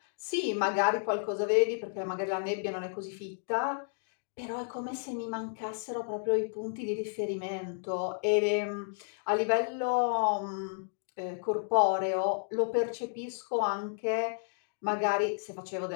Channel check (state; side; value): silent; right; digital silence